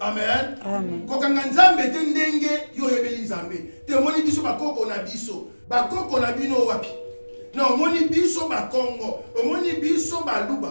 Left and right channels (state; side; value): inverted; both; correlation -1.00